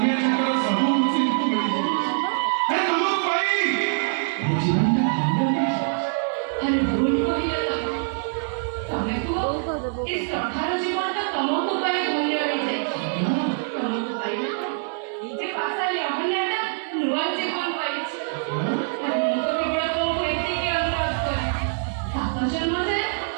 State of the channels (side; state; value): left; silent; 60 dB below the other